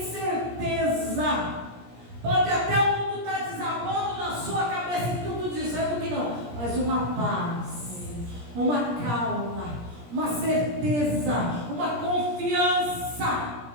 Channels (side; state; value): left; late; 17 ms